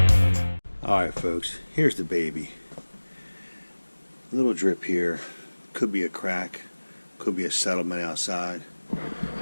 All right, folks, here's the baby. A little drip here. Could be a crack. Could be a settlement outside.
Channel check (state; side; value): inverted; both; correlation -1.00